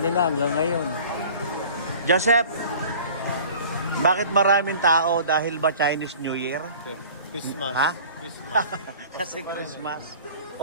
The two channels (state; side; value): inverted; both; correlation -0.45